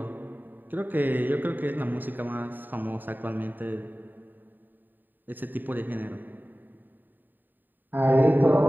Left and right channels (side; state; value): left; late; 0.090 ms